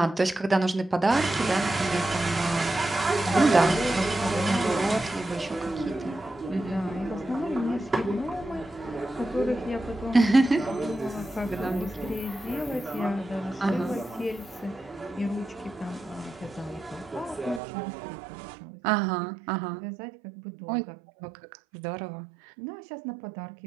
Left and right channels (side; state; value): left; drops out; at 17.6 s